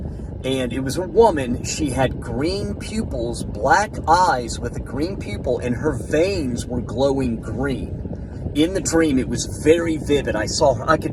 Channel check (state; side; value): identical; both; correlation 1.00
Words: And it was a woman. She had green pupils, black eyes with a green pupil, and her veins were glowing green. In the dream, it was very vivid. I saw her. I could